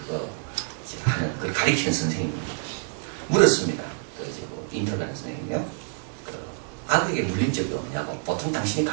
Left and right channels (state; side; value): silent; left; 55 dB below the other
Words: 이제 하는, 그걸 가리키는 선생님입니다. 물었습니다. 인터뷰하는 선생님이요. 악에게 물린 적이 없냐고. 보통 당신이